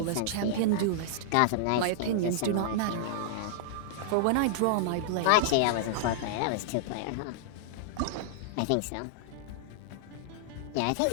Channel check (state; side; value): different; both; correlation -0.01